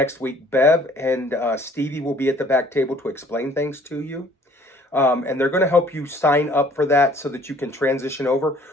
week. Bev and Stevie will be at the back table to explain things to you. And they're going to help you sign up for that so that you can transition over.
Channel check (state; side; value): normal; both; correlation 0.56